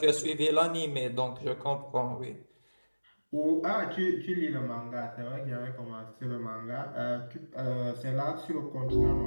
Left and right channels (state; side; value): inverted; both; correlation -1.00